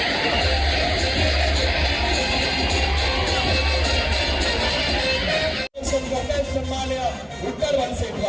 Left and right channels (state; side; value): identical; both; correlation 1.00